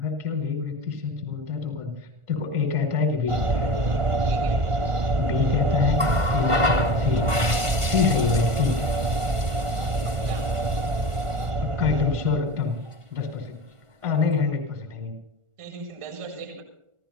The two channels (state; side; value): late; left; 1.5 ms